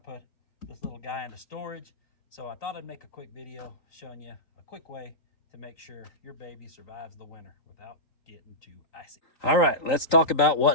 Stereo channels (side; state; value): right; late; 3.8 ms